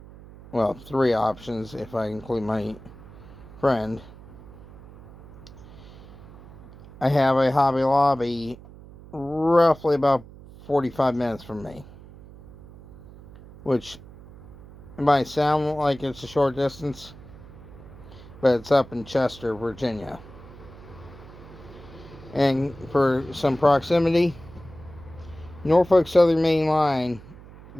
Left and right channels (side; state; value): right; noise; hum, 19 dB below the sound